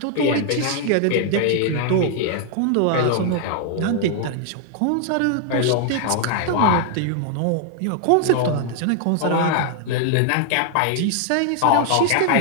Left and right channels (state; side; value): different; both; correlation 0.00